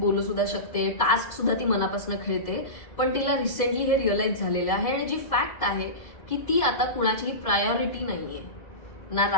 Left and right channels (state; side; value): late; right; 2.0 ms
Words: सुद्धा शकते, टास्क सुद्धा ती मनापासून खेळते. पण तिला रिसेंटली हे रिअलाइज झालेलं आहे आणि जी फॅक्ट आहे की ती आता कुणाचीही प्रायोरिटी नाहीये. ना